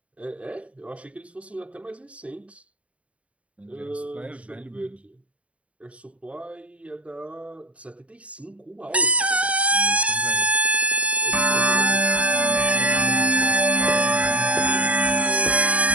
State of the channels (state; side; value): late; left; 0.064 ms